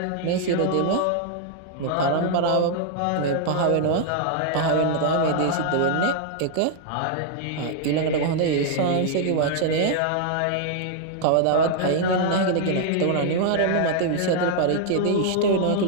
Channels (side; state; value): both; different; correlation -0.01